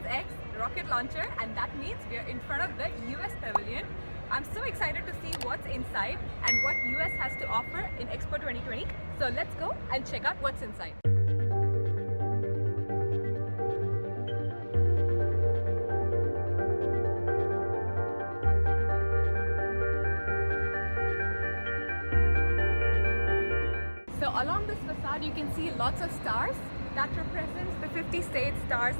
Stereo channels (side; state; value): both; inverted; correlation -1.00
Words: rocket launcher, and that means we are in front of the US Pavilion. I'm so excited to see what's inside and what US has to offer in Expo 2020. So let's go and check out what's inside. So along this facade you can see lots of stars that represents the 50 state stars